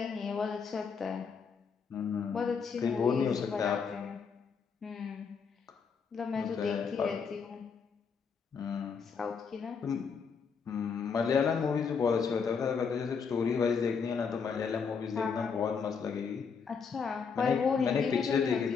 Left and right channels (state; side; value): quieter; right; 5.9 dB